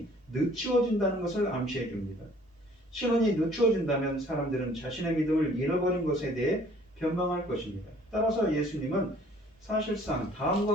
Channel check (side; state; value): both; normal; correlation 0.56